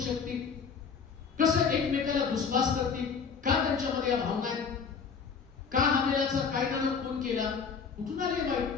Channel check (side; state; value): right; quieter; 5.9 dB